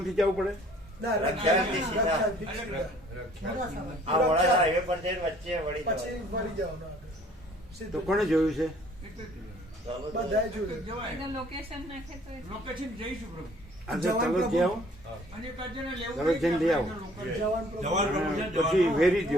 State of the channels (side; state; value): both; normal; correlation 0.56